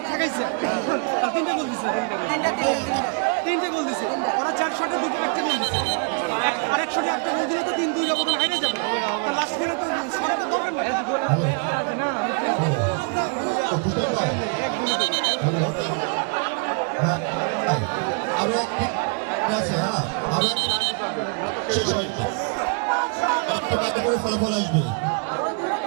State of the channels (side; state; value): left; quieter; 36.5 dB